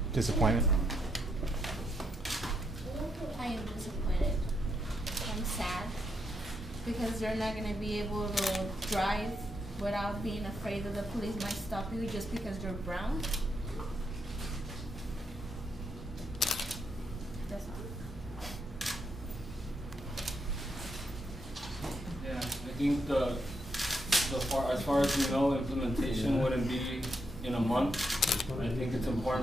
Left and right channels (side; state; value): both; normal; correlation 0.79